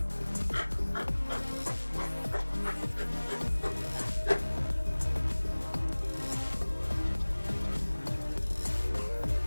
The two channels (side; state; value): both; inverted; correlation -1.00